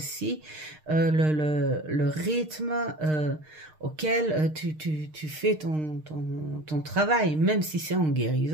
le rythme auquel tu fais ton travail, même si c'est en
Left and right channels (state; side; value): late; left; 6.5 ms